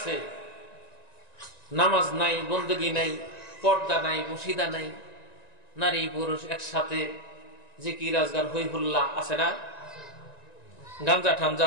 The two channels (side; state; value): right; late; 1.9 ms